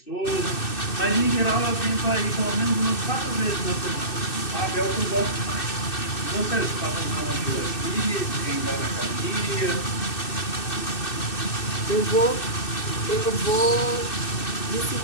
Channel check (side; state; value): right; late; 2.6 ms